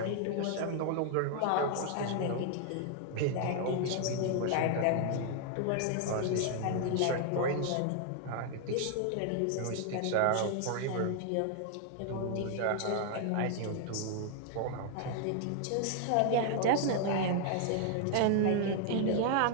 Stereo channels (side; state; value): both; different; correlation 0.00